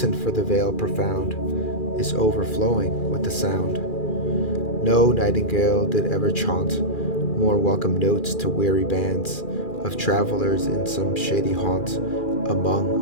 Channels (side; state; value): right; late; 2.4 ms